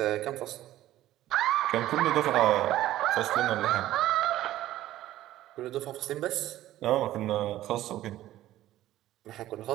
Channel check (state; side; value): quieter; left; 14.2 dB